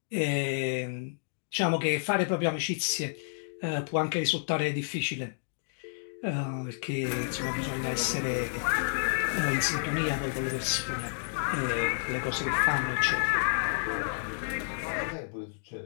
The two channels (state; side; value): silent; right; digital silence